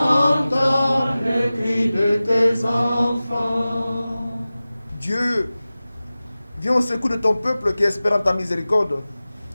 le cri de tes enfants. Dieu, viens au secours de ton peuple qui espère en ta miséricorde.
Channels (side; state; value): both; inverted; correlation -0.97